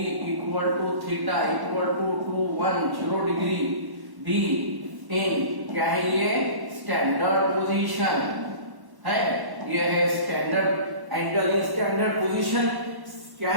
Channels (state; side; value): late; left; 1.1 ms